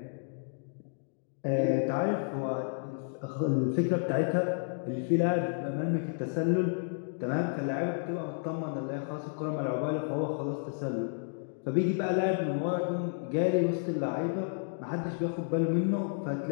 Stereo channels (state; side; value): silent; right; digital silence